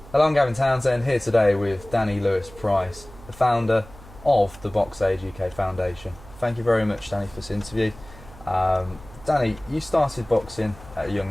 Hello, I'm Gavin Townsend, here today with Danny Lewis-Price, the founder of the Boxaid UK Foundation. Thank you very much, Danny, for this interview. Danny, you started boxing at a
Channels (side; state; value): right; noise; hum, 20 dB below the sound